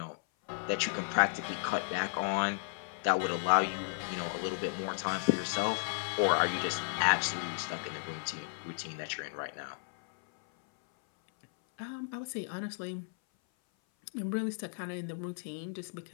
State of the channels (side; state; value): right; silent; 55 dB below the other